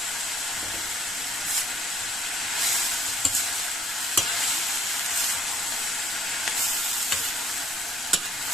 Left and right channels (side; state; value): both; normal; correlation 0.62